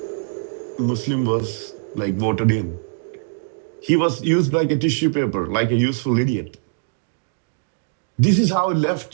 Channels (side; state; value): left; silent; digital silence